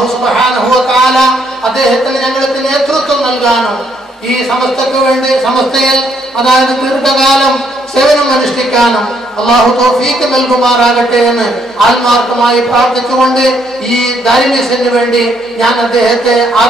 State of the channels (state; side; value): normal; both; correlation 0.71